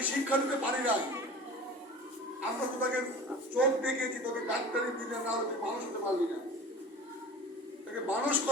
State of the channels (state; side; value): normal; both; correlation 0.38